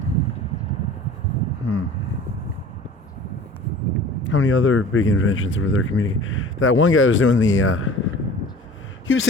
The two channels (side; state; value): both; normal; correlation 0.43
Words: How many other big inventions were there communicating? That one guy was doing he was